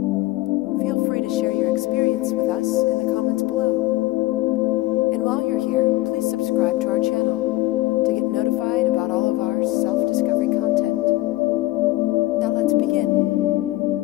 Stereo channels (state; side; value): quieter; right; 18.5 dB